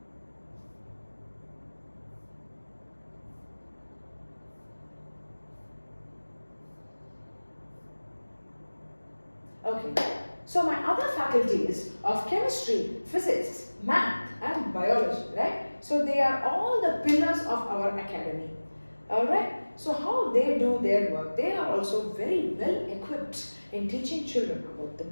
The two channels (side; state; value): both; inverted; correlation -1.00